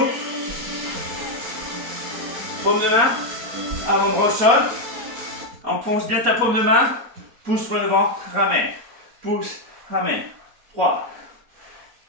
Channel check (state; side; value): late; left; 4.2 ms